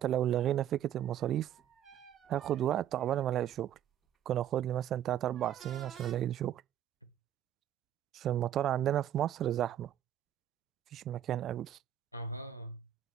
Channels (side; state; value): left; quieter; 11.1 dB